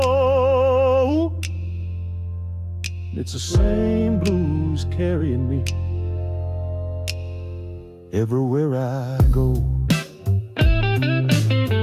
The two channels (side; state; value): both; identical; correlation 1.00